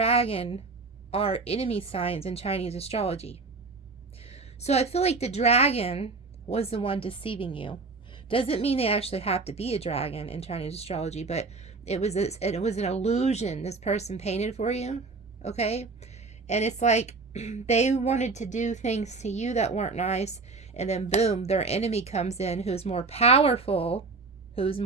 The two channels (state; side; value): quieter; left; 4.0 dB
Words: are enemy signs in Chinese astrology. So I feel like the dragon was the one deceiving you. Doesn't mean they actually have to be a dragon in Chinese astrology, but it was an illusion this person painted for you, okay? And it's like they wanted to do things to you that weren't nice, and then boom, their enemy comes in who's more powerful